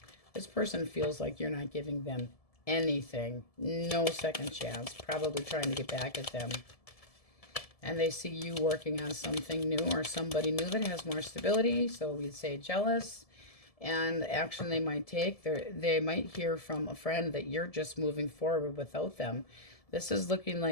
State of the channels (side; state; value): right; late; 1.7 ms